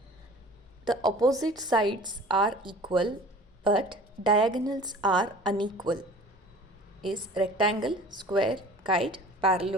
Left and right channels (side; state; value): both; normal; correlation 0.44